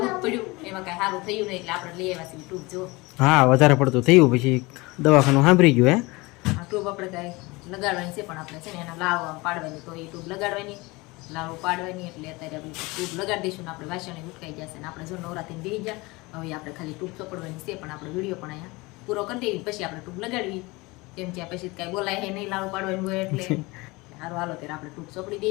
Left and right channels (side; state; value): right; quieter; 23.5 dB